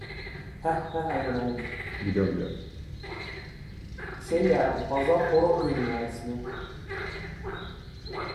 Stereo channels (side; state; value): both; identical; correlation 1.00